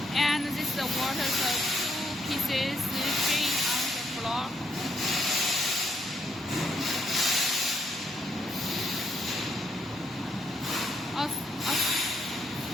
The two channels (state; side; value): normal; both; correlation 0.75